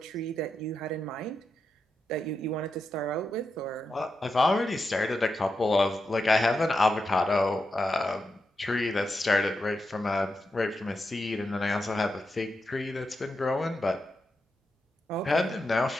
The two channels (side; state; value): both; normal; correlation 0.87